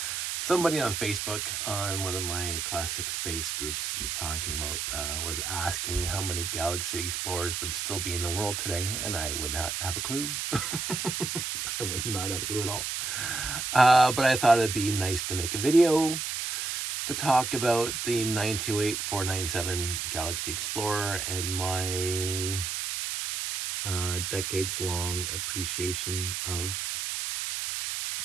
Somebody on Facebook on one of my classic space groups was talking about, was asking how many galaxy explorers would still be in the world today, and I would not have a clue. I would not have a clue at all. But I thought it'd be nice to make a video to talk about the 928-497 Galaxy Explorer and my decades-long appreciation of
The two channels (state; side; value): noise; right; hiss, 2 dB below the sound